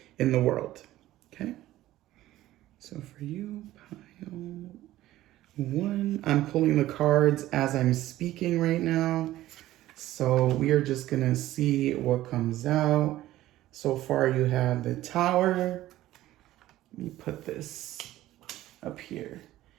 in the world. Okay, so for you, pile 1, I'm pulling the cards as I'm speaking right now. So we are just going to see what comes out. So far you have the Tower. Let me put this up here.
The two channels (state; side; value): quieter; left; 15.1 dB